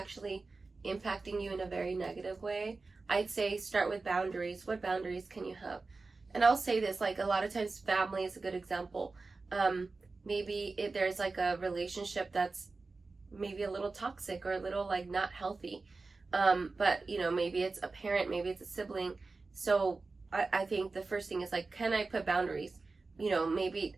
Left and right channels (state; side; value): quieter; left; 3.8 dB